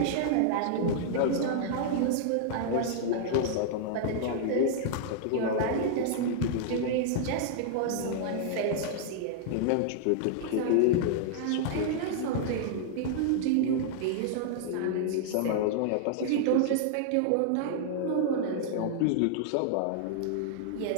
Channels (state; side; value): different; both; correlation -0.01